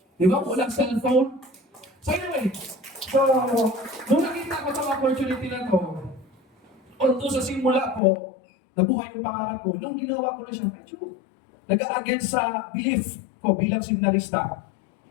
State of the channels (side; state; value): right; drops out; at 8.0 s